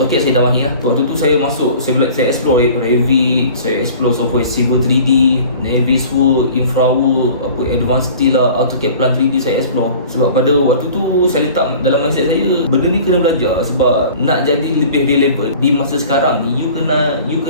saya dah mahir lah. Waktu tu saya masuk, saya explore Revit, saya explore software Civil 3D, Navisworks, Infraworks, Advanced Steel lah, AutoCAD Plan 3D saya explore. Sebab pada waktu tu saya letak dalam mindset saya, benda ni kena belajar sebab nak jadi lebih relevant di masa sekarang ni, you kena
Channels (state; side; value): inverted; both; correlation -0.45